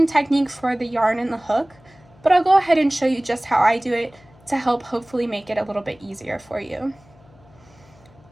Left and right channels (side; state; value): left; noise; hum, 27 dB below the sound